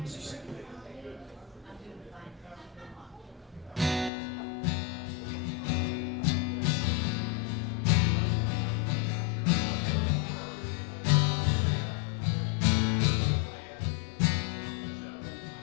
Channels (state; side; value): drops out; right; at 4.1 s